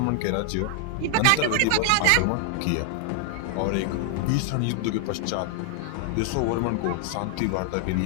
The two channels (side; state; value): both; different; correlation 0.00